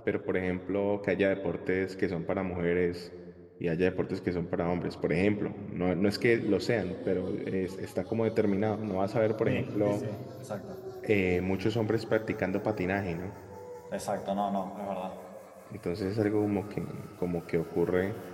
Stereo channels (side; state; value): both; identical; correlation 1.00